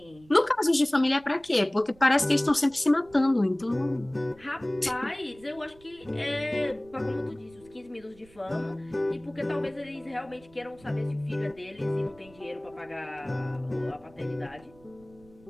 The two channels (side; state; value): right; noise; rumble, 26 dB below the sound